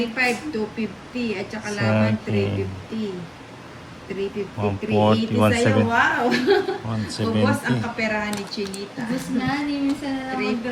25, 250. At saka Sa laban, akin. 350. 350, 140, 380 sa'yo. 170. Wow! Ubos ang 170. kaperahan ni Chinita. Tapos na, ni minsan na lang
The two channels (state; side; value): identical; both; correlation 1.00